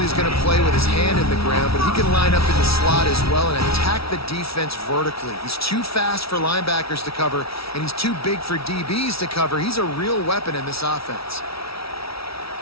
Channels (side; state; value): right; late; 0.76 ms